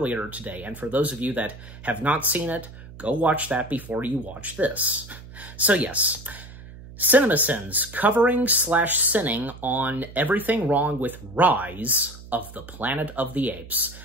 today. And for those of you that have not seen it, go watch that before you watch this. So yes, CinemaSins, covering/sinning on everything wrong with Rise of the Planet of the Apes.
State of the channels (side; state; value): right; noise; hum, 16 dB below the sound